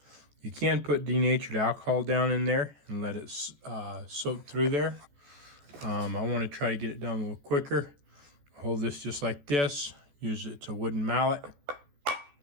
You can put denatured alcohol down in there and let it soak through there. I want to try to get it done a little quicker. Hold this just like this. Use it's a wooden mallet.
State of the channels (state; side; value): late; left; 14 ms